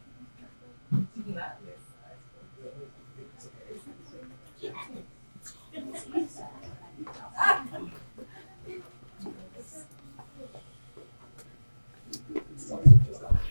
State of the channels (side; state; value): both; inverted; correlation -1.00